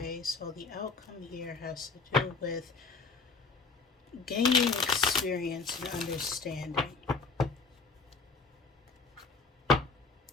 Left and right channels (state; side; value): quieter; right; 4.4 dB